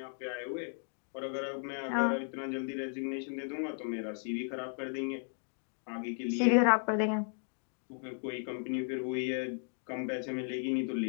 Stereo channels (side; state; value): right; silent; 54 dB below the other